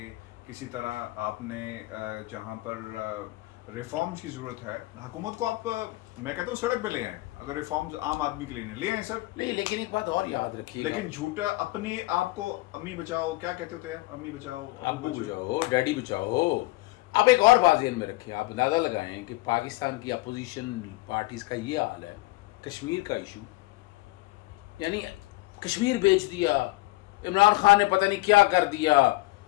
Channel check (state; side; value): quieter; right; 21.2 dB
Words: کسی طرح آپ نے جہاں پر ریفارمز کی ضرورت ہے حکومت کو, آپ میں کہتا ہوں سڑک پہ لے آئیں. اگر ریفارمز عام آدمی کے لیے نہیں لے آئیں سر, نہیں, لیکن ایک بات اور یاد رکھیے, لیکن جھوٹا اپنی آپ کو امی بچاؤ کیا کہتے ہوتے ہیں, امی بچاؤ, ابو بچاؤ, ڈیڈی بچاؤ. اب ایک اور بات ذہن میں رکھیں, آپ اندازہ لگائیں کہ پاکستان کی اپوزیشن پارٹیز کا یہ حال ہے. کشمیر کا ایشو, یعنی کشمیر بیچ دیا, عمران خان نے پتہ نہیں کیا کر دیا,